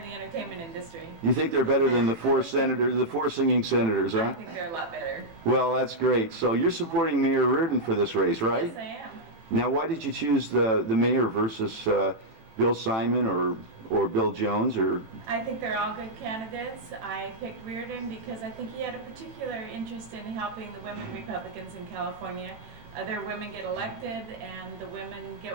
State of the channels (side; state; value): left; late; 18 ms